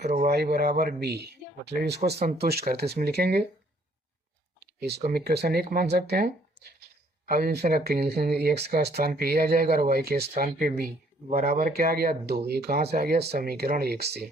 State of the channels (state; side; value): normal; both; correlation 0.63